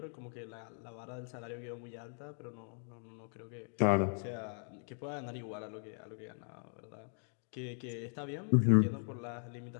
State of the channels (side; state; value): right; silent; 52 dB below the other